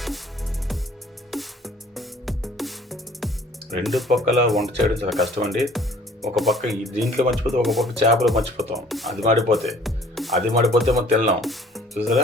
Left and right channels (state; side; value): normal; both; correlation 0.54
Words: రెండు పక్కల వంట చేయడం చాలా కష్టం అండి. ఒక పక్క దీంట్లో మర్చిపోతే ఒక పక్క చేపలు మర్చిపోతాం. అది మాడిపోతే మనం తినలేం.